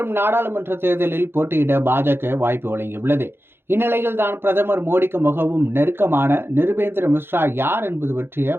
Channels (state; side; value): late; left; 0.11 ms